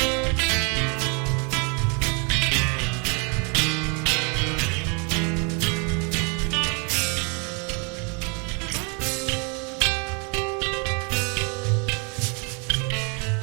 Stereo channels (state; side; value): quieter; left; 34.5 dB